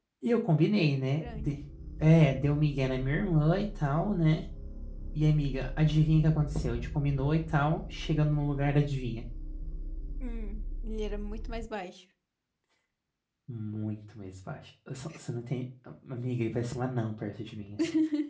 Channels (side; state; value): both; identical; correlation 1.00